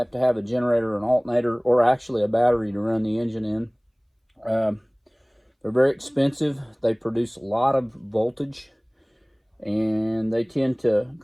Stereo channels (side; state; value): both; identical; correlation 1.00